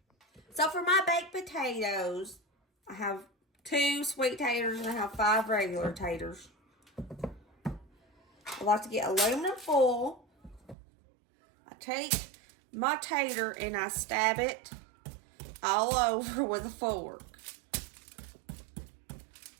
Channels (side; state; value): left; drops out; at 10.8 s